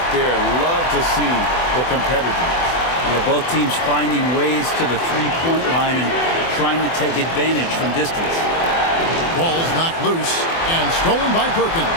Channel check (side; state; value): right; late; 24 ms